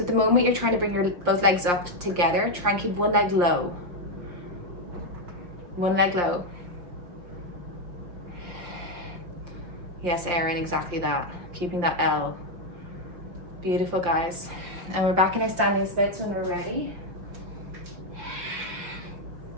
at the moment you're trying to bring your both legs up together, try and keep one leg low. One leg low. Yes, Erin, exactly that. Keeping that L. Beautiful, guys. And we're back in our standing splits when we're ready.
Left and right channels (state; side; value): late; left; 5.7 ms